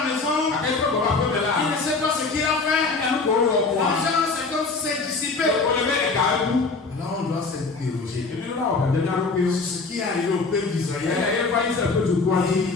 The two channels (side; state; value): right; quieter; 4.0 dB